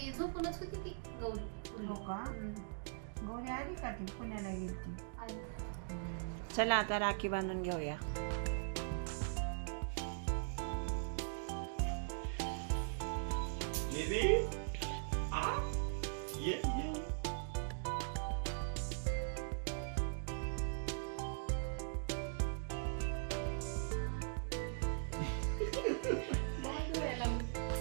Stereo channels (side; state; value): left; silent; digital silence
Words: झोपूनच होती ती गौरी. गौरी आली का? ती पुण्याला गेली. चला आता राखी बांधून घेऊया.